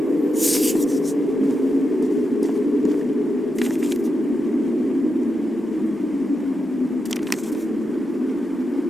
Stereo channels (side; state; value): both; normal; correlation 0.87